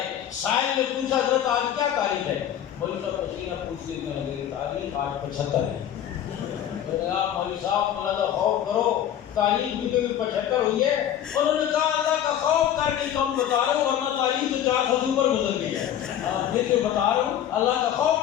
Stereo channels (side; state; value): right; quieter; 10.6 dB